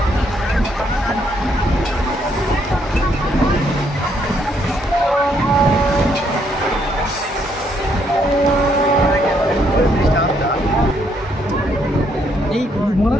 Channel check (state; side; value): normal; both; correlation 0.71